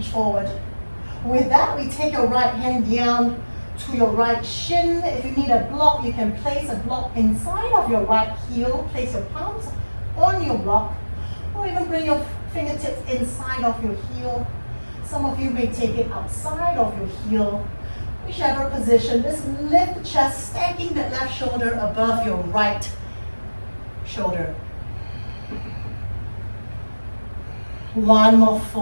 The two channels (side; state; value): both; inverted; correlation -1.00